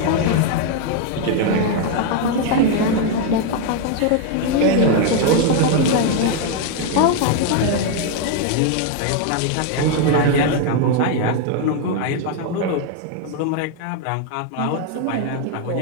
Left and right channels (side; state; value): both; different; correlation 0.01